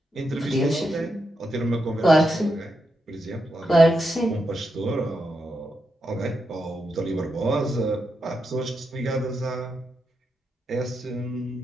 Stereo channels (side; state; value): both; normal; correlation 0.85